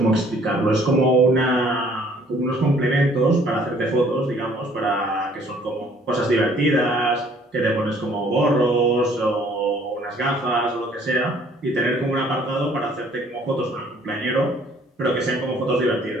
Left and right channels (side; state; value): both; normal; correlation 0.59